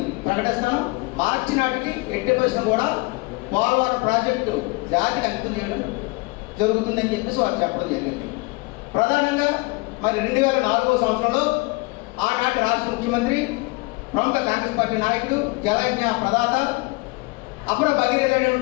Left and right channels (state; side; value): quieter; right; 25.4 dB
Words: ప్రకటిస్తాను, మార్చి నాటికి ఎట్టి పరిశ్రమ కూడా పోలవరం ప్రాజెక్టు జాతికి అంకితం చేయడం జరుగుతుందని చెప్పేసి వారు చెప్పడం జరిగింది. ప్రధానంగా మరి 2004వ సంవత్సరంలో ఆనాటి రాష్ట్ర ముఖ్యమంత్రి, ప్రముఖ కాంగ్రెస్ పార్టీ నాయకుడు, జలయజ్ఞ ప్రదాత, అపర